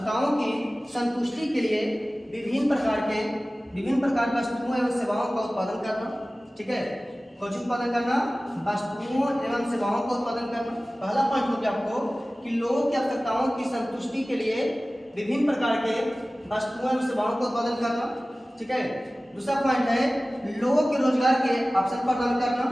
की संतुष्टि के लिए विभिन्न प्रकार की वस्तुओं एवं सेवाओं का उत्पादन करना। ठीक है, कुछ उत्पादन करना, वस्तुओं एवं सेवाओं का उत्पादन करना। पहला पॉइंट हो गया आपको कि लोगों की आवश्यकताओं की संतुष्टि के लिए विभिन्न प्रकार के वस्तुओं एवं सेवाओं का उत्पादन करना। ठीक है, दूसरा पॉइंट है लोगों के रोजगार के अवसर प्रदान करना।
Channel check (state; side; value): normal; both; correlation 0.97